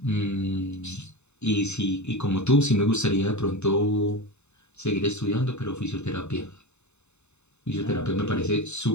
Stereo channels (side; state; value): right; late; 0.82 ms